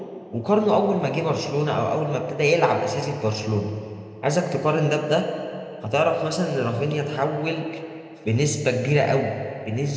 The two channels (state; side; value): identical; both; correlation 1.00